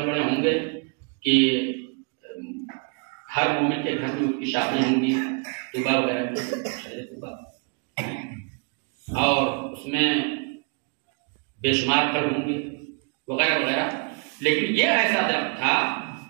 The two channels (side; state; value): left; quieter; 36.2 dB